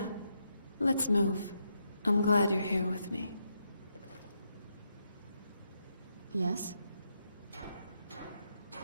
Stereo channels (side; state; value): both; inverted; correlation -0.82